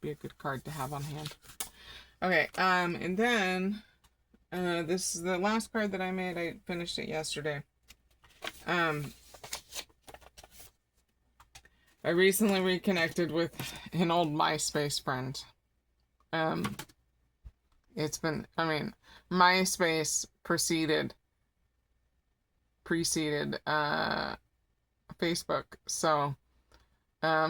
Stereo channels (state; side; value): identical; both; correlation 1.00